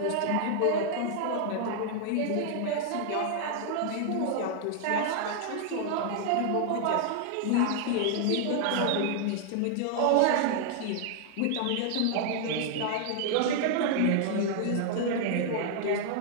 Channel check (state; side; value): different; both; correlation 0.00